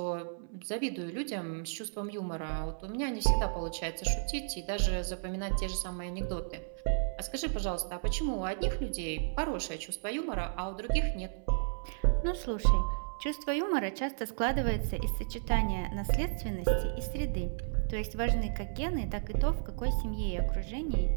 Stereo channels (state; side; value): silent; left; 56 dB below the other